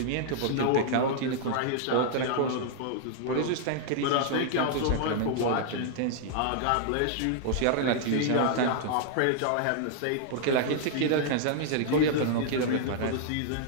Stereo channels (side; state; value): both; different; correlation -0.01